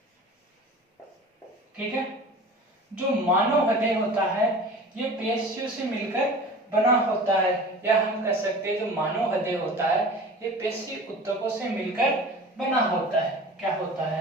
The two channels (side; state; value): both; normal; correlation 0.39